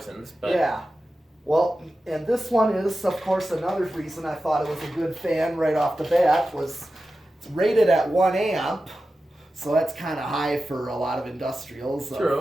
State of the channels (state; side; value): normal; both; correlation 0.93